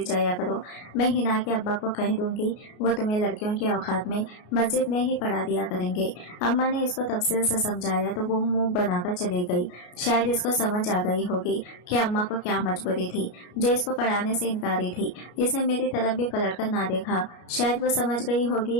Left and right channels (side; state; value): right; late; 33 ms